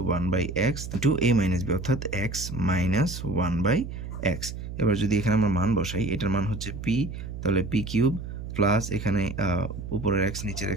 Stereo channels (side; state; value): right; noise; hum, 8 dB below the sound